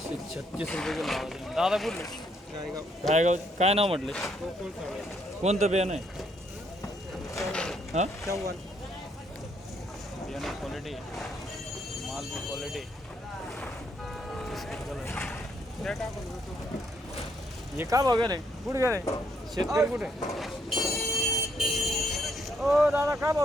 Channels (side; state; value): both; normal; correlation 0.72